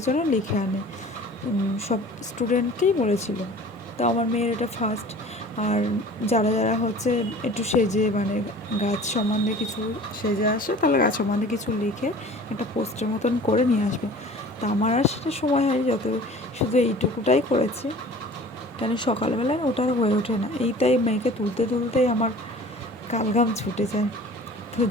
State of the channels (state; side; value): normal; both; correlation 0.44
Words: যেন লিখে আনে। সব স্টুডেন্টকেই বলেছিল। তো আমার মেয়ের এটা ফার্স্ট। আর যারা যারা হচ্ছে একটু সেজে, মানে গাছ সম্বন্ধে কিছু সেজে আসে, তাহলে গাছ সম্বন্ধে কিছু লিখে একটা পোস্টার মতন করে নিয়ে আসবে। তা আমার আর সেটা সময় হয়নি, শুধু এইটুকুটাই করেছি, কেন সকালবেলায় ওটা আর হয়ে ওঠে না। এইটাই মেয়েকে তুলতে তুলতেই আমার কালঘাম ছুটে যায়। তো